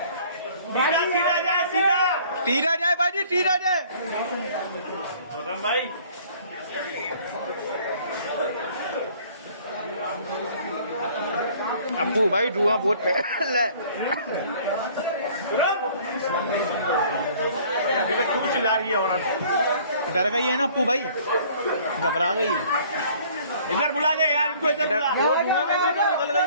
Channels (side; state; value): both; inverted; correlation -0.54